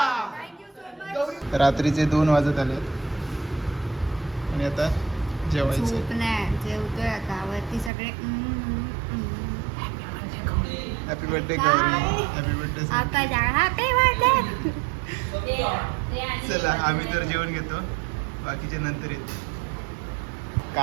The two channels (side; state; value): left; drops out; at 7.9 s